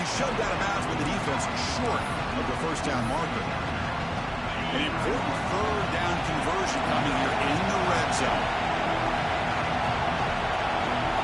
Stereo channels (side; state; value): both; identical; correlation 1.00